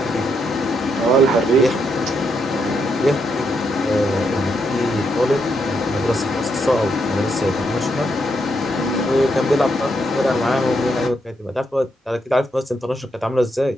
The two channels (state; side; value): normal; both; correlation 0.79